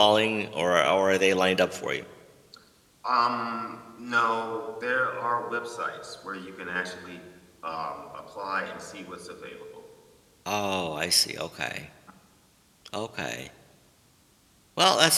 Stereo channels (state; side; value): identical; both; correlation 1.00